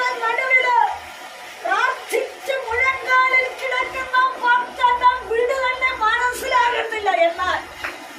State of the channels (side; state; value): both; identical; correlation 1.00